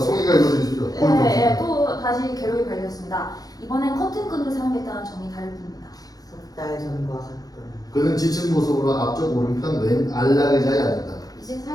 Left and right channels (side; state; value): right; late; 0.18 ms